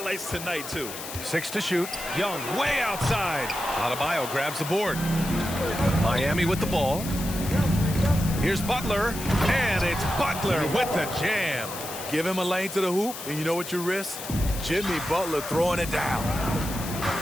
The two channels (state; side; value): noise; left; hiss, 9 dB below the sound